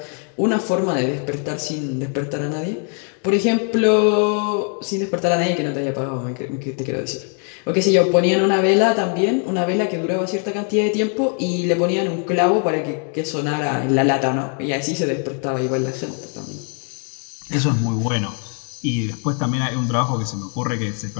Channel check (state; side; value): quieter; right; 39.1 dB